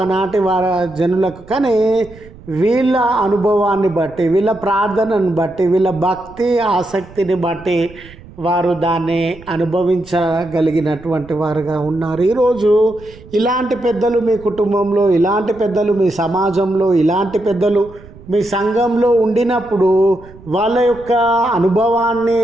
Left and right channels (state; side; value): noise; right; rumble, 20 dB below the sound